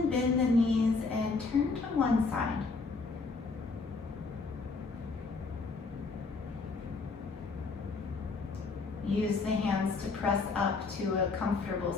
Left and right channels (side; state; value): right; quieter; 4.1 dB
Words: bend the knees and turn to one side. Use the hands to press up to a comfortable